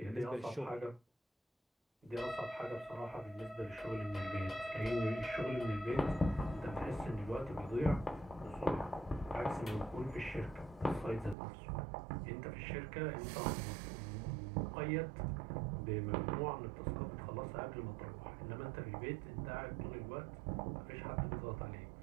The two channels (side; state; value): left; drops out; at 11.4 s